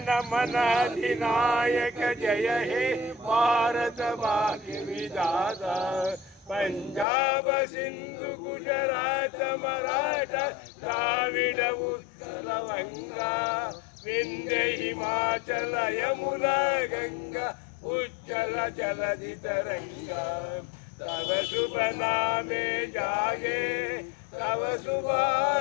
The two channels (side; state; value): right; drops out; at 7.1 s